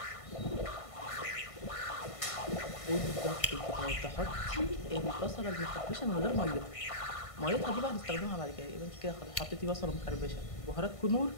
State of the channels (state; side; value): late; right; 1.5 ms